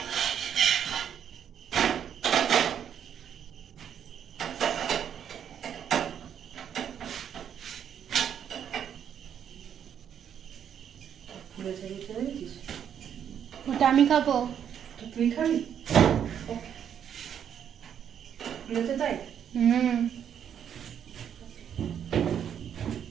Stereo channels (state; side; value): quieter; left; 8.8 dB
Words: ওটা আমি খাবো। তুই খাবি? তাই